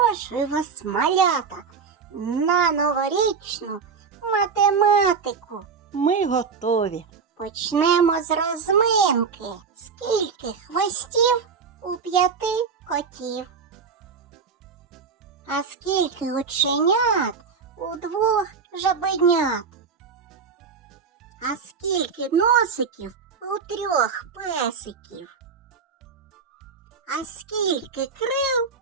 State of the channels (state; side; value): quieter; left; 5.6 dB